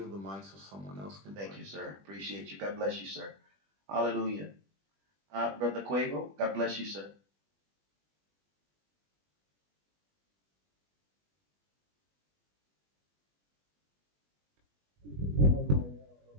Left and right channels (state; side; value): late; left; 20 ms